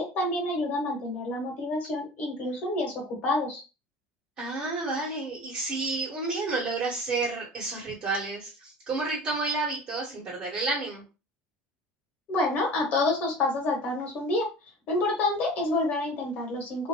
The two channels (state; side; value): normal; both; correlation 0.38